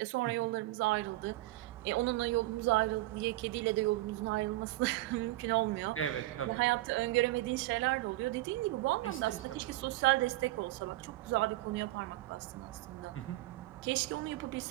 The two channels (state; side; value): quieter; left; 18.0 dB